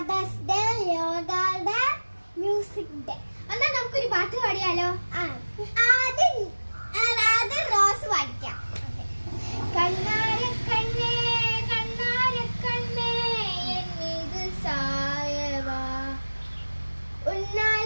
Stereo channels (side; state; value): both; inverted; correlation -1.00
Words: day, yoga day, music day. എന്നാ നമുക്കൊരു പാട്ട് പാടിയാലോ? ആദ്യം റോസ് പാടിക്കാം. കണ്ണാരക്കണ്ണേ കണ്ണാരക്കണ്ണേ എന്നീത് സായവാ